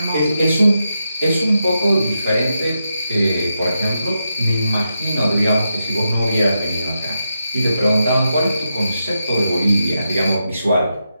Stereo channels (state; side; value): inverted; both; correlation -0.86